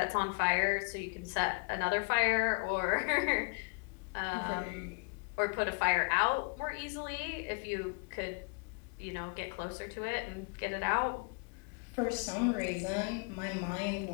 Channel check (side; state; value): right; quieter; 36.3 dB